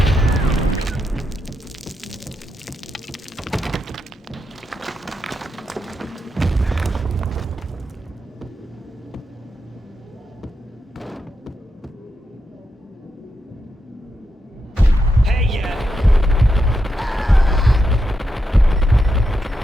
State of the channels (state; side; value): normal; both; correlation 0.85